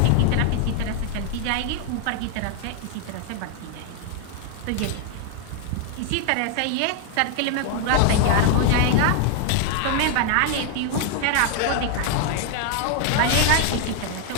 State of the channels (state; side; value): different; both; correlation 0.00